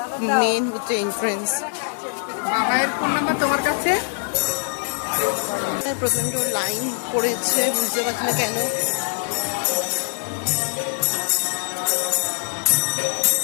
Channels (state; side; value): silent; right; digital silence